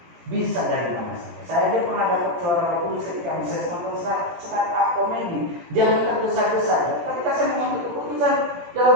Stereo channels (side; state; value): left; late; 17 ms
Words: Bisa dari mana saja. Saya aja pernah dapat suara Roh Kudus ketika saya nonton stand-up komedi. Jangan tergesa-gesa. Ketika saya mengambil keputusan dalam